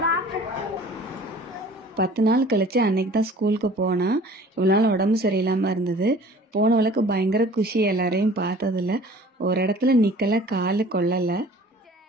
10 நாள் கழிச்சு அன்னைக்கு தான் ஸ்கூலுக்கு போனா. இவ்வளோ நாள் உடம்பு சரியில்லாமல் இருந்தது. போனவளுக்கு பயங்கர குஷி, எல்லாரையும் பார்த்ததில்ல. ஒரு இடத்துல நிற்கல, காலு கொள்ளலை.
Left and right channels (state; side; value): normal; both; correlation 0.48